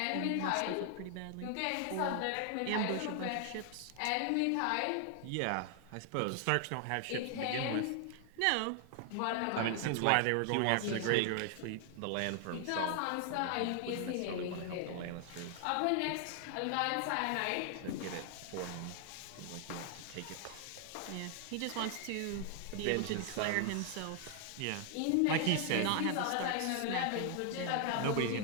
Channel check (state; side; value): different; both; correlation 0.00